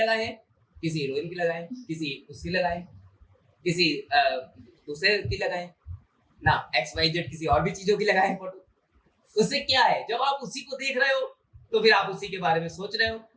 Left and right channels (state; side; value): identical; both; correlation 1.00